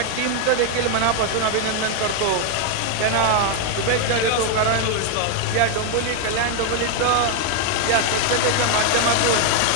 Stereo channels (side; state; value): both; different; correlation 0.00